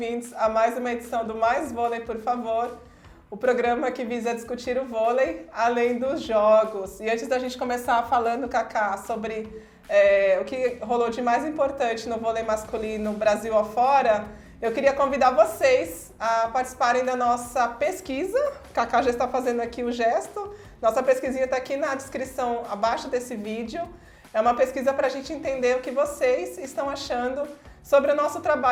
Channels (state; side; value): identical; both; correlation 1.00